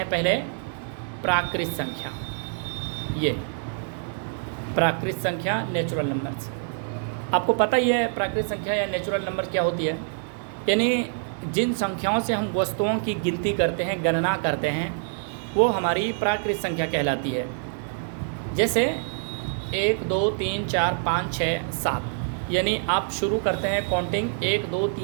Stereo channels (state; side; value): silent; left; digital silence